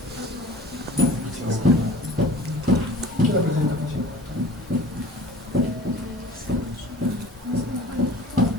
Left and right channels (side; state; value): both; normal; correlation 0.44